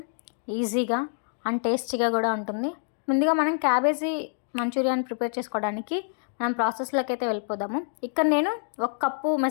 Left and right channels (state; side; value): silent; right; digital silence